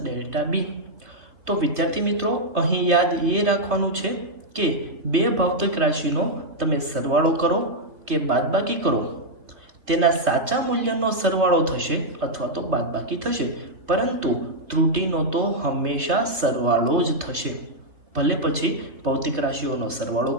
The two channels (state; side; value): late; left; 2.8 ms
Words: delta b. તો વિદ્યાર્થી મિત્રો, અહીં યાદ એ રાખવાનું છે કે બે ભૌતિક રાશિનો તમે સરવાળો કરો કે બાદબાકી કરો તેના સાચા મૂલ્યનો સરવાળો થશે અથવા તો બાદબાકી થશે, પરંતુ ત્રુટીનો તો હંમેશા સરવાળો જ થશે, ભલે પછી ભૌતિક રાશિઓનો સરવાળો